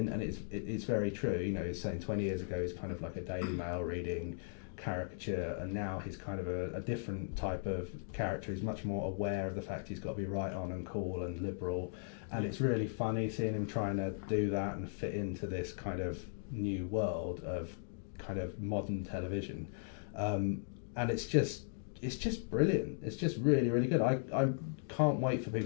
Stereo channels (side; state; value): right; silent; digital silence